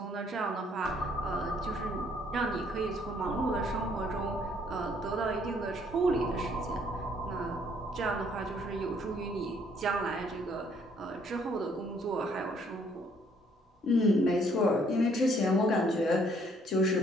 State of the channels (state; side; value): normal; both; correlation 0.65